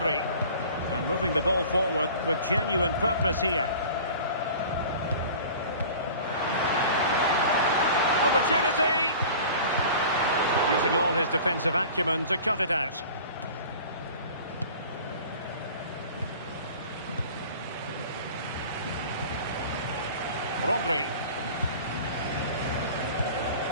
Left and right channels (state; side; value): inverted; both; correlation -0.42